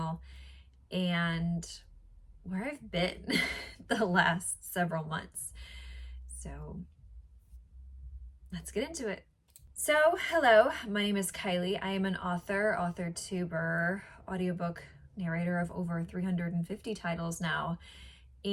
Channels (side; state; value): both; identical; correlation 1.00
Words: and where I've been the last several months. So let's get into it. So hello, my name is Kylie. I am an author, tuber, audiobook narrator of over 350 titles now,